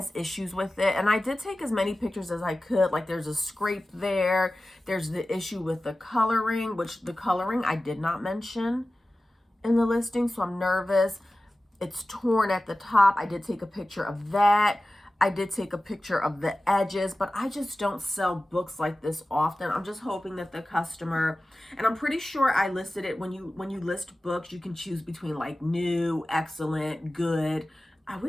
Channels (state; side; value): normal; both; correlation 0.96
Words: issues with it. And I did take as many pictures as I could. Like there's a scrape there. There's the issue with the coloring, which the coloring I did not mention in the listing. So I'm nervous. It's torn at the top. I did take a picture of that. I did take a picture of the edges, but I just don't sell books like this often. I'm just hoping that the customer, and I'm pretty sure I listed it when you list books, you can choose between like new, excellent, good. I